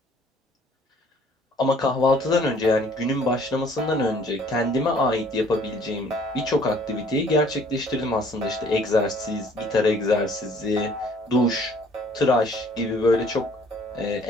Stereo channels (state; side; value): normal; both; correlation 0.58